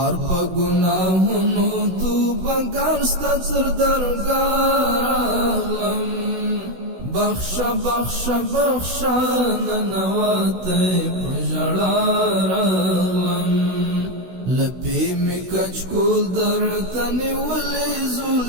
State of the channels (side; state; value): left; late; 16 ms